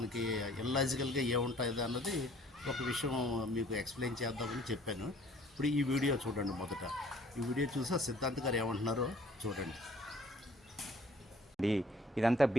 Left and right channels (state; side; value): normal; both; correlation 0.56